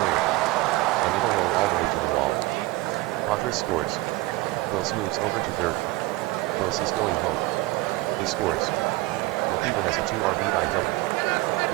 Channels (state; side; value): quieter; left; 20.5 dB